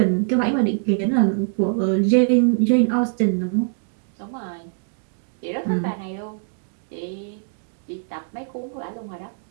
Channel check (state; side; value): silent; left; digital silence